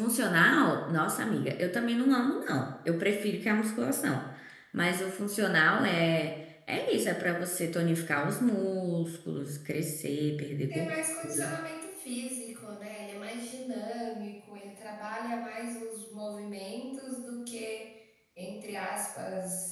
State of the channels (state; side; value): identical; both; correlation 1.00